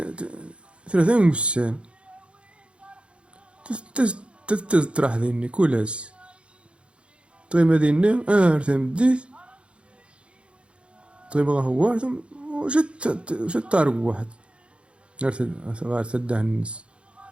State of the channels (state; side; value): late; left; 0.058 ms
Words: 3 وسام تطرح ذيني كولاس طيب هذيني تمديت طيب هو ثم وشت طارق واحد غار تداه الناس